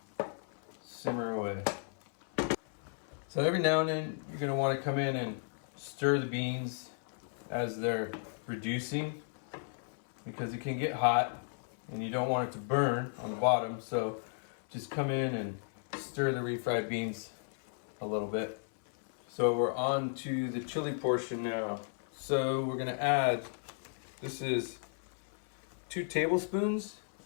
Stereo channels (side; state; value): right; silent; 55 dB below the other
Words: away. So every now and then you're going to want to come in and stir the beans as they're reducing, because it can get hot and you don't want it to burn on the bottom. So just come in and stir the refried beans a little bit. So we're on to the chili portion now. So we're gonna add, this is 2 tablespoons